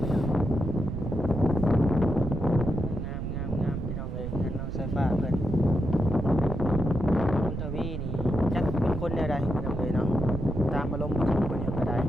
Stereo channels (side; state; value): right; noise; rumble, 4 dB below the sound